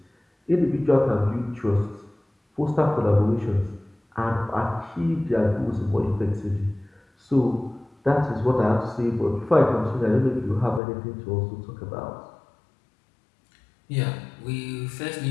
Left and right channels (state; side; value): drops out; right; at 10.8 s